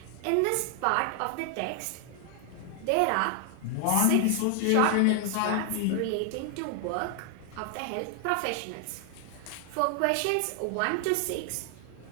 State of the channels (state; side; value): different; both; correlation 0.00